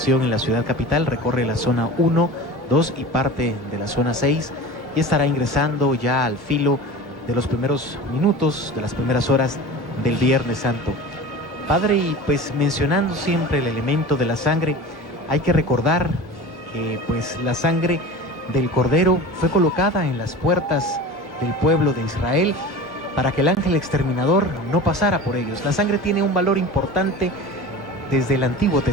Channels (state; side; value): normal; both; correlation 0.35